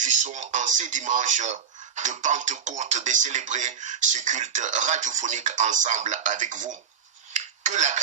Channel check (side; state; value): left; quieter; 7.1 dB